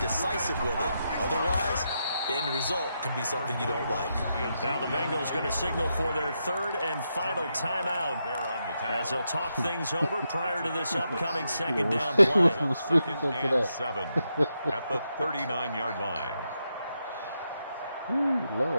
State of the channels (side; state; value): both; inverted; correlation -0.84